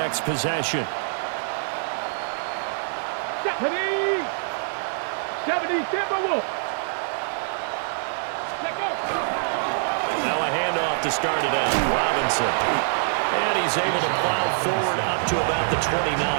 possession. 70 Timberwolves. Now a handoff to start it out. Robinson. And he's able to plow forward up to about the 29,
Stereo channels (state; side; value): silent; left; 58 dB below the other